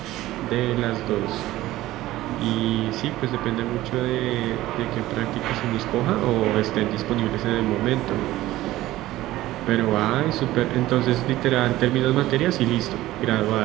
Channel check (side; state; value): left; quieter; 16.1 dB